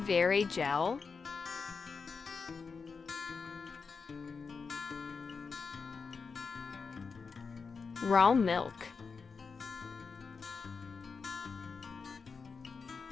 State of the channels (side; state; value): right; quieter; 5.1 dB